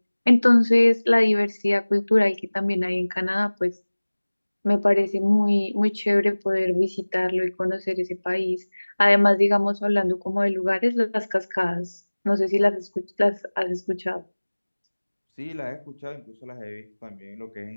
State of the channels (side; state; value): both; inverted; correlation -1.00